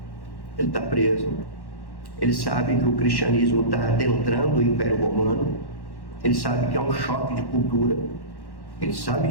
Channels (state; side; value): late; right; 1.1 ms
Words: Ele está preso. Ele sabe que o cristianismo está adentrando o Império Romano. Ele sabe que é um choque de cultura. Ele sabe